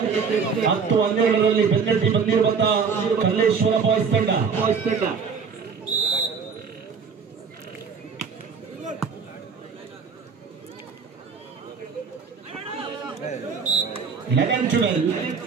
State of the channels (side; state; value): left; quieter; 5.7 dB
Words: 10-12 ಬೆನ್ನಟ್ಟಿ ಬಂದಿರುವಂತಹ ಕಲ್ಲೇಶ್ವರ ಬಾಯ್ಸ್ ತಂಡ.